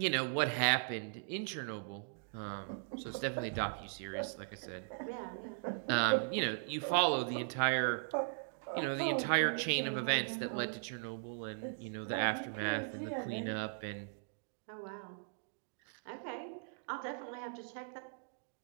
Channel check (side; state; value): left; silent; digital silence